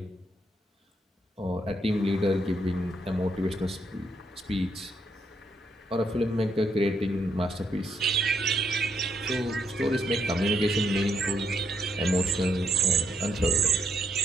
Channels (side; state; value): both; normal; correlation 0.75